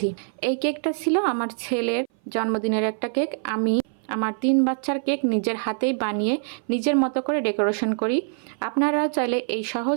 এই কেকটা ছিল আমার ছেলের জন্মদিনের একটা কেক। আমি আমার 3 বাচ্চার কেক নিজের হাতেই বানিয়ে নিজের মতো করে ডেকোরেশন করি। আপনারা চাইলে এই সহজ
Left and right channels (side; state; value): left; silent; 58 dB below the other